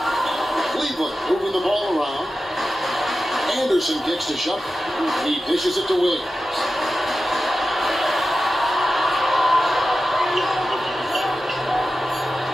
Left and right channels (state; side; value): normal; both; correlation 0.93